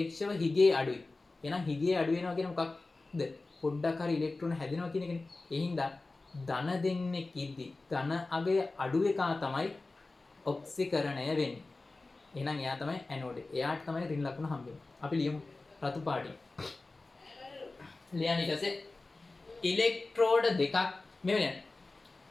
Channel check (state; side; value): quieter; right; 3.3 dB